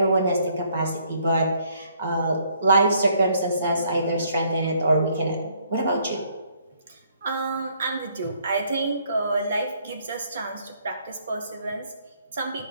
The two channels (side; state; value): both; inverted; correlation -0.67